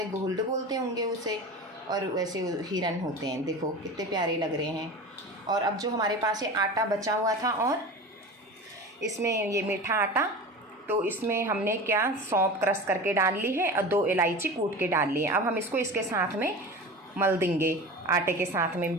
गोल्ड बोलते होंगे उसे, और वैसे हिरन होते हैं। देखो कितने प्यारे लग रहे हैं। और अब जो हमारे पास ये आटा बचा हुआ था, और इसमें ये मीठा आटा, तो इसमें हमने क्या, सौंफ क्रश करके डाल ली है और 2 इलायची कूट के डाल ली है। अब हम इसको इसके साथ में मल देंगे, आटे के साथ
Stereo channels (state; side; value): normal; both; correlation 0.32